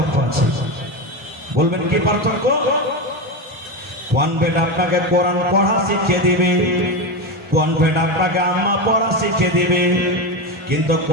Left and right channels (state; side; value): normal; both; correlation 0.16